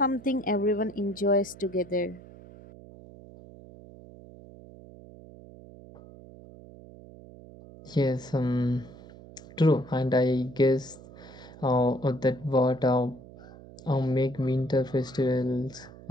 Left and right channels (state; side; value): noise; right; hum, 19 dB below the sound